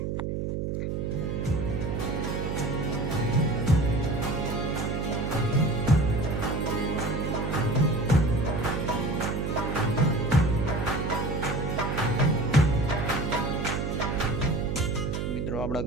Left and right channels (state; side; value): noise; right; hum, 1 dB below the sound